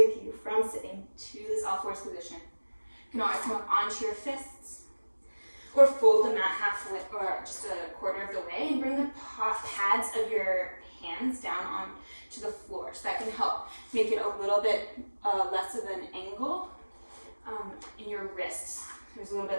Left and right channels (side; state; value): both; inverted; correlation -1.00